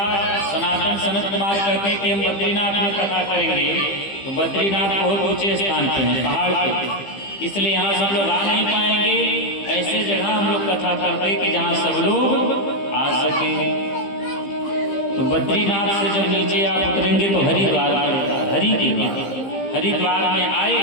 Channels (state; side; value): late; right; 15 ms